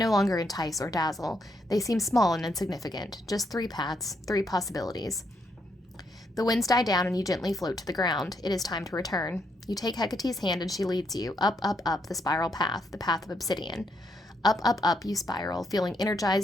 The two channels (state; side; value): normal; both; correlation 0.76